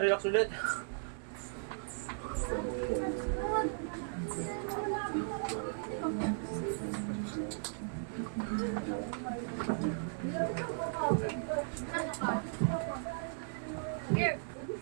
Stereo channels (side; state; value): left; silent; 53 dB below the other